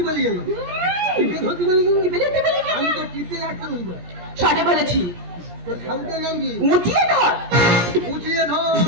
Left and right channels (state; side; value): late; left; 17 ms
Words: বলি গেল? টিপে ধরতি বলি গেল? টিপে ধরতে বলি গেল? আমি তো টিপে রাখতে বলবো। সঠিক বলেছি। তোর ঠাকুরের নাম কি? উঁচিয়ে ধর। উঁচিয়ে ধর।